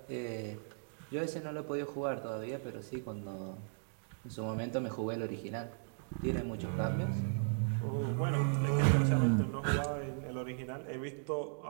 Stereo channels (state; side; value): silent; left; digital silence